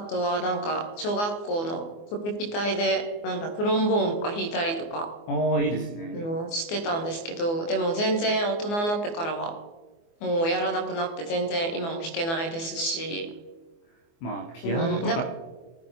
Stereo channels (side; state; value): right; late; 24 ms